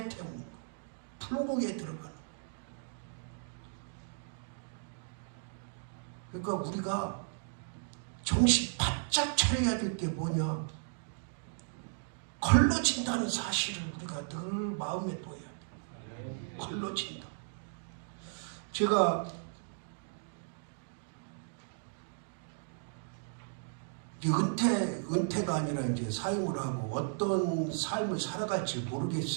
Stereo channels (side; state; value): left; silent; digital silence